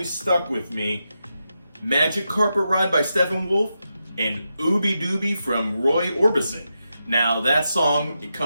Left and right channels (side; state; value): both; inverted; correlation -0.87